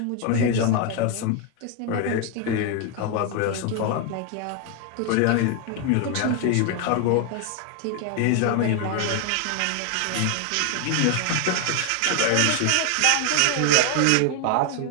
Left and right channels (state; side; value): different; both; correlation 0.01